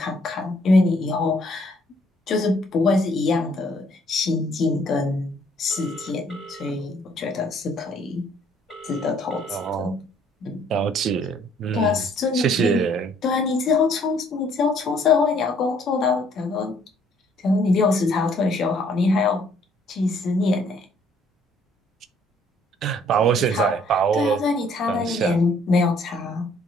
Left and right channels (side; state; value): both; normal; correlation 0.63